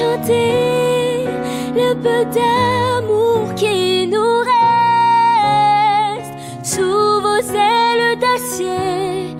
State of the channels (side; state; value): both; identical; correlation 1.00